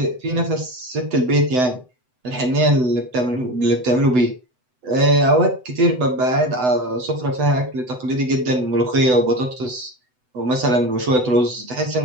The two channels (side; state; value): left; late; 7.9 ms